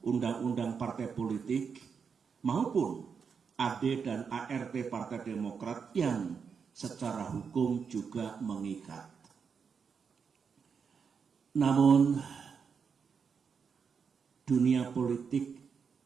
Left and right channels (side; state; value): left; quieter; 6.2 dB